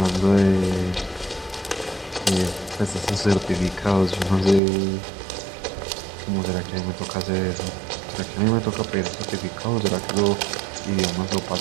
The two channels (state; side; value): drops out; left; at 4.6 s